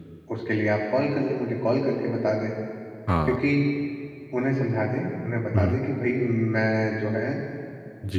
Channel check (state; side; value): identical; both; correlation 1.00